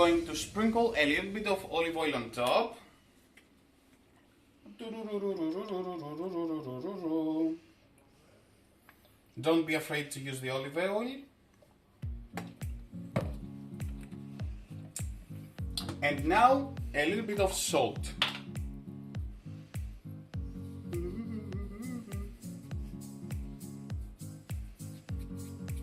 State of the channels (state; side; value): identical; both; correlation 1.00